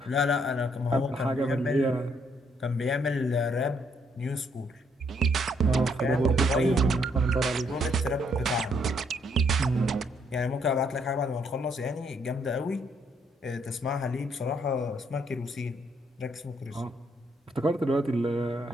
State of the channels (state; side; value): normal; both; correlation 0.71